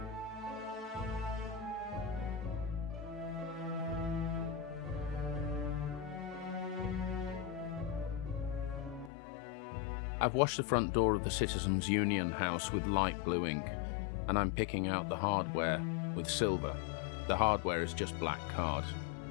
I've washed the front door of the Citizens Union house with light blue ink, and I'm picking out the hardware with silver. The hardware is just black card.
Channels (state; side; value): drops out; right; at 9.1 s